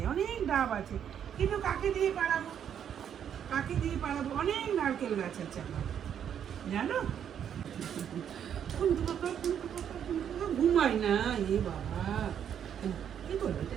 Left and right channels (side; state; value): left; quieter; 8.9 dB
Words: অনেক ডাব আছে, কিন্তু কাকে দিয়ে পাড়াবো? কাকে দিয়ে পাড়াবো? অনেক নারকেল গাছ আছে আমার, জানো? ঘুমাই না এ বাবা। কি করবো এটা?